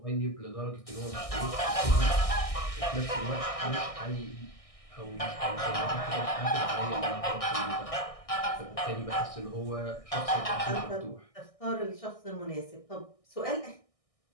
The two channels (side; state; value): right; late; 1.6 ms